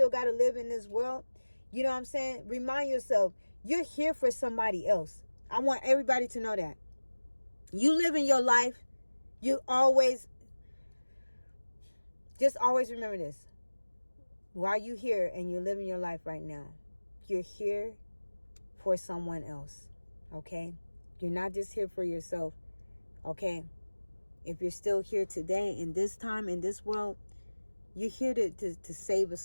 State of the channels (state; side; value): inverted; both; correlation -1.00